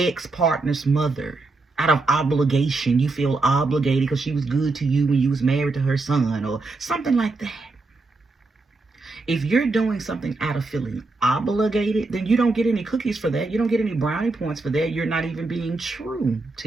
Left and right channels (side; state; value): left; quieter; 3.4 dB